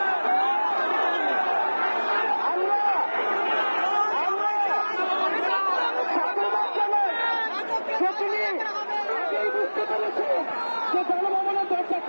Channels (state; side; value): inverted; both; correlation -1.00